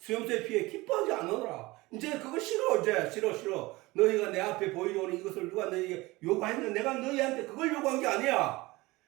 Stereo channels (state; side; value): quieter; left; 21.3 dB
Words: 피해 기뻐하지 않으라. 이제 그거 싫어. 이제 싫어. 너희가 내 앞에 보이려니 이것을 누가 너희에게 요구했는데 내가 너희한테 그걸 요구한 게 아니야.